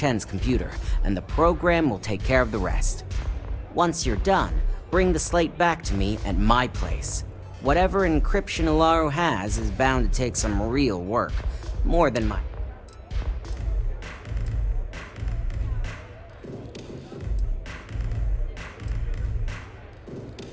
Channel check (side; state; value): both; identical; correlation 1.00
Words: computer, and the program will take care of the rest. Once you're done, bring the slate back to me at my place. Whatever encryption Ularu has is bound to take some real work. More than my...